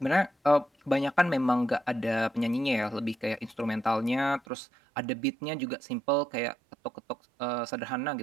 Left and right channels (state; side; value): drops out; left; at 4.4 s